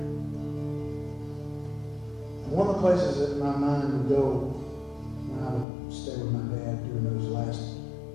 One of the places that my mind would go when I would stay with my dad during those last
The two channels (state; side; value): drops out; right; at 5.7 s